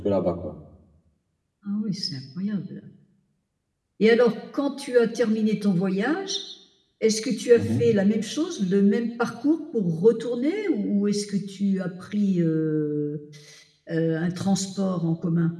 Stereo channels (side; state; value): both; identical; correlation 1.00